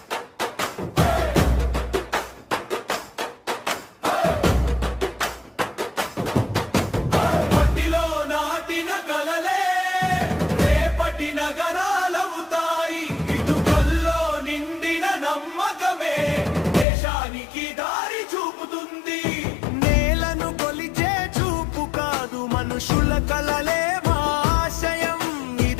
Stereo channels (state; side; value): drops out; right; at 16.9 s